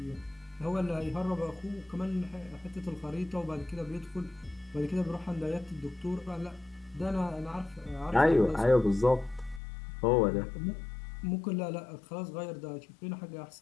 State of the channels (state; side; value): drops out; right; at 9.6 s